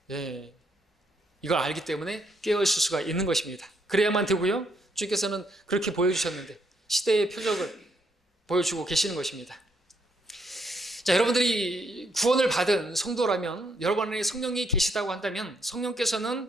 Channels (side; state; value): both; normal; correlation 0.73